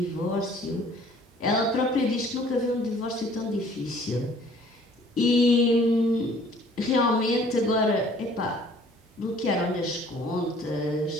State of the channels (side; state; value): both; normal; correlation 0.55